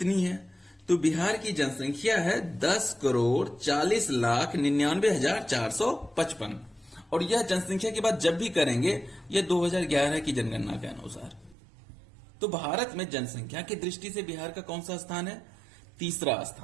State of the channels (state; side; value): drops out; left; at 11.6 s